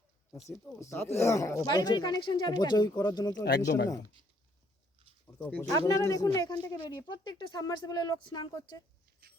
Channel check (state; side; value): normal; both; correlation 0.67